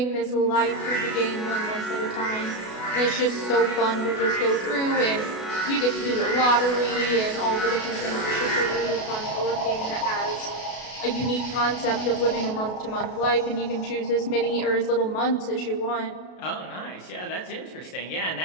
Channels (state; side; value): late; right; 32 ms